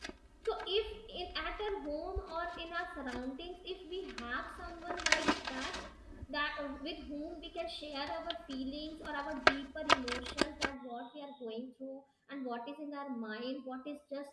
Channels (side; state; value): both; identical; correlation 1.00